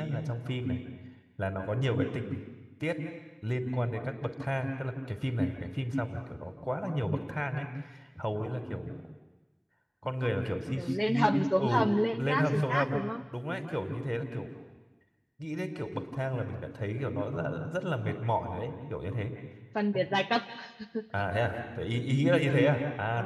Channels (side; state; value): both; identical; correlation 1.00